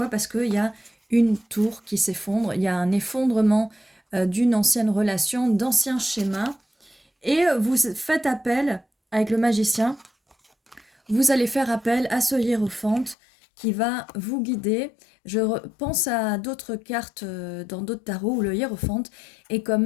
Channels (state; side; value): drops out; right; at 13.2 s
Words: Parce qu'il y a une tour qui s'effondre. Il y a un effondrement d'une ancienne relation, d'anciens schémas. Et vous faites appel avec le magicien. Vous allez faire appel à ce hiérophante qui va vous guider. Je pense à d'autres cartes dans d'autres tarots où le hiérophante est quand